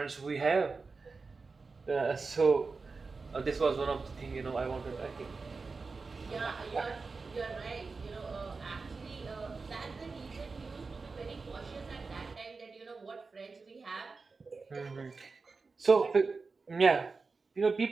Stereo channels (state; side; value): quieter; left; 4.3 dB